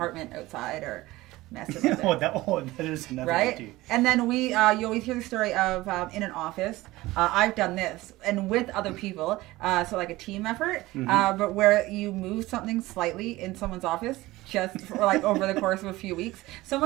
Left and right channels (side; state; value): left; quieter; 18.7 dB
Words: outside or messing with it. that is another right? too. And then you always hear the story of in an office. I've done this and with other people, so like a team effort, but where you move something slightly in someone's office just for like over the course of a few weeks.